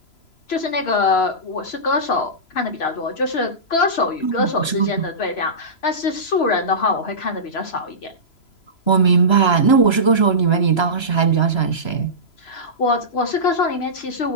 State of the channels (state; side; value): late; right; 3.0 ms